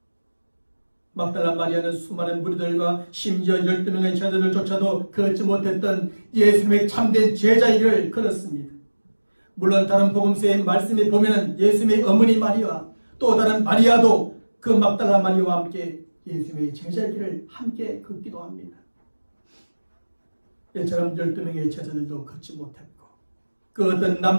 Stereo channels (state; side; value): inverted; both; correlation -1.00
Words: 막달라 마리아는 수많은 무리들과 심지어 12명의 제자들조차도 걷지 못했던 예수님의 참된 제자의 길을 걸었습니다. 물론 다른 복음서의 말씀에 보면 예수님의 어머니 마리아, 또 다른 마리아도 그 막달라 마리아와 함께 예수님의 제자의 길을 함께 걷기도 합니다. 이처럼 12명의 제자들도 걷지 못했고 그 어떤